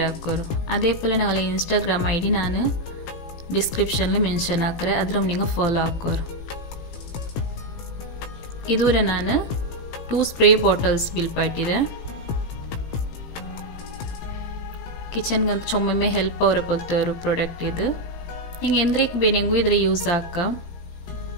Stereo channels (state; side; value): late; right; 17 ms